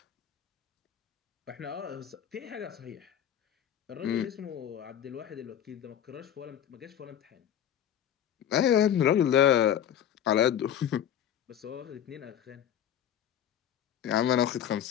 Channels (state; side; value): quieter; right; 9.9 dB